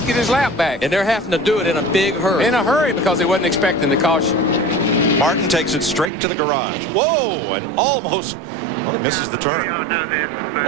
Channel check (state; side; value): drops out; left; at 6.1 s